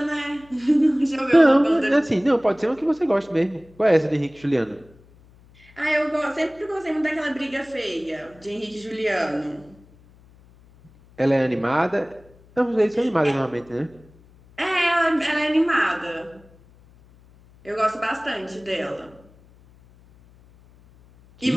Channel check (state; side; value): noise; left; hum, 27 dB below the sound